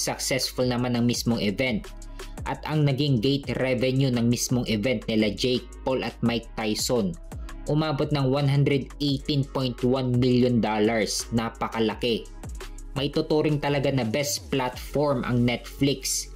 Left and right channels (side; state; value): both; identical; correlation 1.00